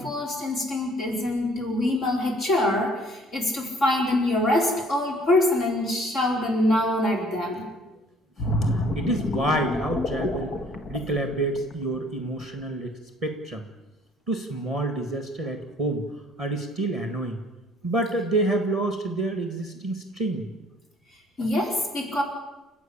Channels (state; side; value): normal; both; correlation 0.57